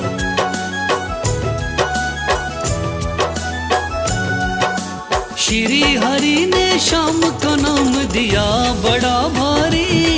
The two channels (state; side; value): identical; both; correlation 1.00